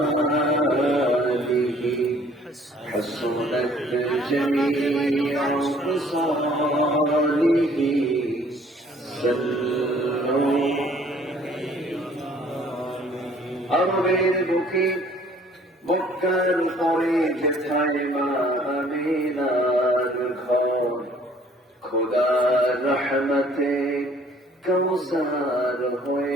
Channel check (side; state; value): both; normal; correlation 0.57